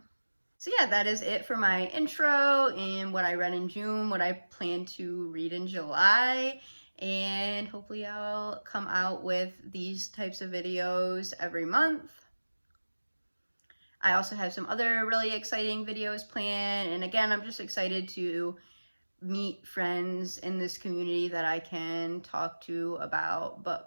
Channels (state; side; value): inverted; both; correlation -1.00